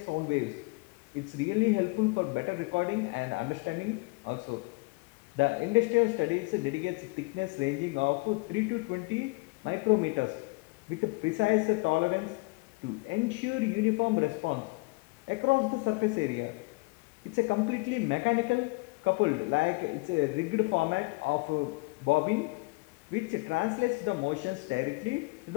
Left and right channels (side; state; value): right; quieter; 27.5 dB